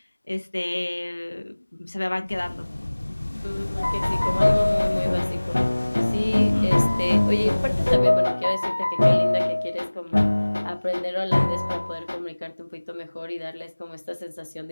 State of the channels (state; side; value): inverted; both; correlation -1.00